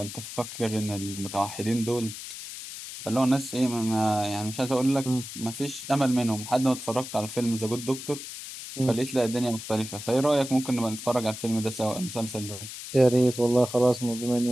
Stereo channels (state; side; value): noise; left; hiss, 10 dB below the sound